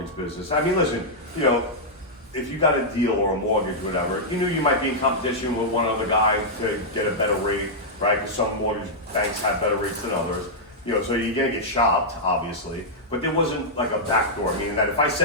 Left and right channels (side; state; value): both; normal; correlation -0.07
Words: business. I mean, listen, if you got a deal or a mortgage, whatever, you knew you might be in competition with one other guy to get a better rate, right? Because some mortgage banks have better rates than others. So you're gonna get shopped, obviously, but there wasn't like a backdoor, meaning that if I